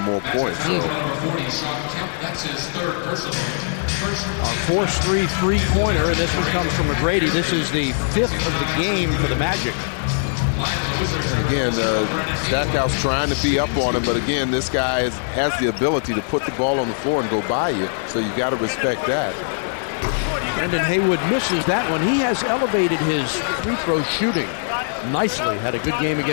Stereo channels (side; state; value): right; silent; 65 dB below the other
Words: more points. So. That's his 3rd personal. Our forced 3-3-pointer, and this one comes from McGrady. This is the 5th of the game for the Magic. Again, Stackhouse trying to be up on him, but again, this guy has the ability to put the ball on the floor and go by you, so you got to respect that. Brendan Haywood misses that one. He has elevated his free throw shooting nicely. Had a good game